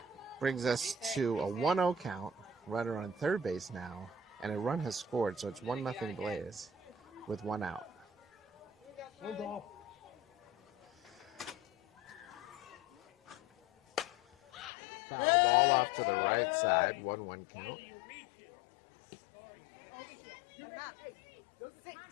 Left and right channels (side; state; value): right; drops out; at 14.7 s